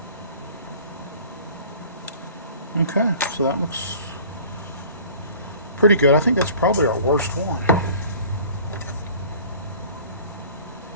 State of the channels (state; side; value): inverted; both; correlation -0.47